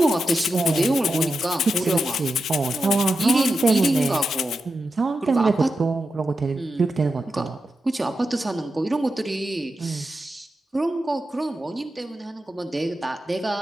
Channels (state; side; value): normal; both; correlation 0.89